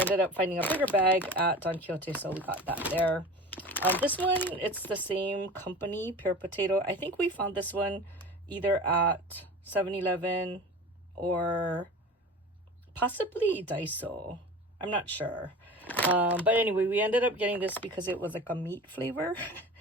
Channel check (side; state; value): both; normal; correlation 0.36